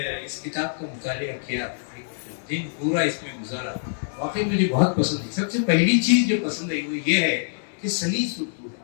اس کتاب کا مطالعہ کیا, ایک دن پورا اس میں گزارا. واقعی مجھے بہت پسند ہے. سب سے پہلی چیز جو پسند ہے وہ یہ ہے کہ سلیس اردو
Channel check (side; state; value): right; silent; 62 dB below the other